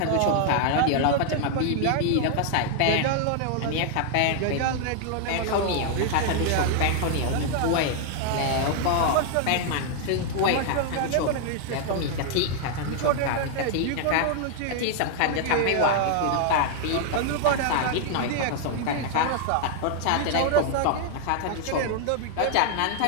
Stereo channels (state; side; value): different; both; correlation 0.00